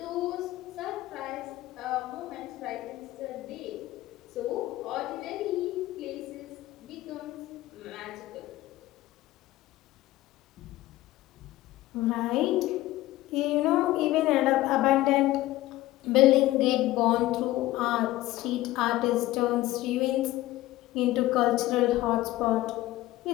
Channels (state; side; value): quieter; right; 16.6 dB